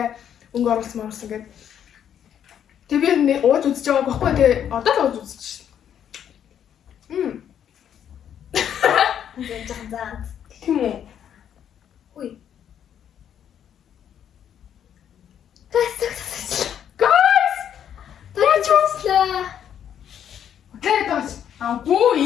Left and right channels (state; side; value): quieter; right; 9.3 dB